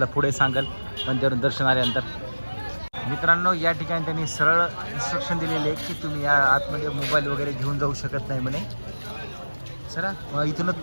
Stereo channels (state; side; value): inverted; both; correlation -1.00